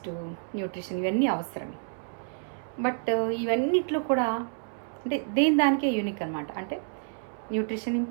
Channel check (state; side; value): silent; left; 59 dB below the other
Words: న్యూట్రిషన్ ఇవన్నీ అవసరం. బట్ ఇవన్నిట్లో కూడా అంటే దేని దానికే యూనిక్ అనమాట. అంటే న్యూట్రిషన్